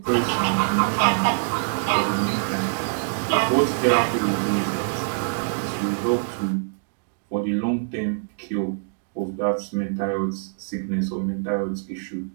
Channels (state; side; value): silent; left; digital silence